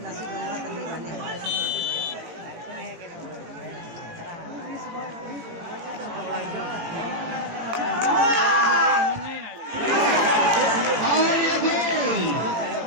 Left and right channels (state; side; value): late; left; 18 ms